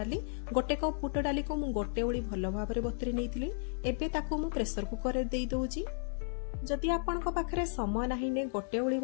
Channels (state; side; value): silent; right; 55 dB below the other